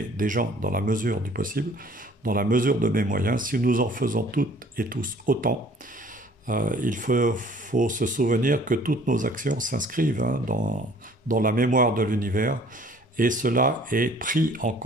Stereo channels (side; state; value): both; normal; correlation 0.54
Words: des gens dans la mesure du possible, dans la mesure de mes moyens. Si nous en faisons toutes et tous autant, il faut se souvenir que toutes nos actions s'inscrivent dans la mémoire de l'univers, et cela est pris en